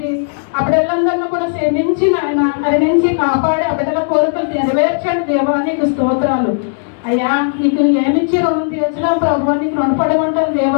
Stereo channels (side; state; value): right; silent; digital silence